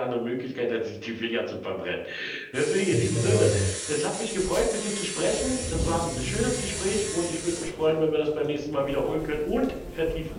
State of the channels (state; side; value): identical; both; correlation 1.00